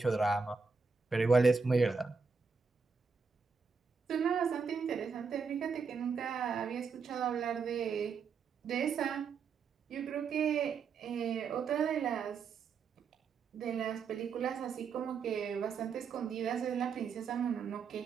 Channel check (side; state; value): left; quieter; 5.3 dB